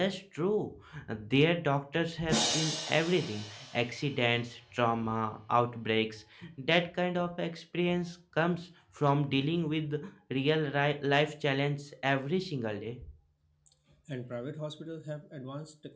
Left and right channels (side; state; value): both; identical; correlation 1.00